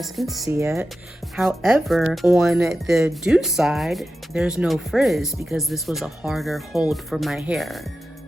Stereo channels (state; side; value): normal; both; correlation 0.92